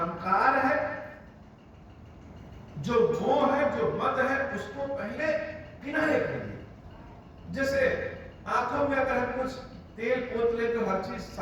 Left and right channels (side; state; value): both; identical; correlation 1.00